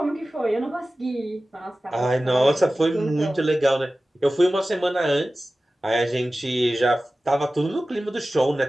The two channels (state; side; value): normal; both; correlation 0.96